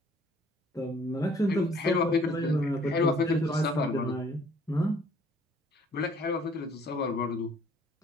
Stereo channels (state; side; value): normal; both; correlation 0.59